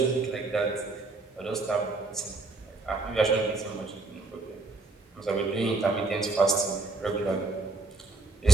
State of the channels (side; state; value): left; quieter; 3.5 dB